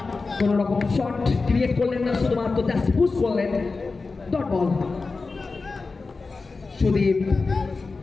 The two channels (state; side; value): quieter; right; 4.0 dB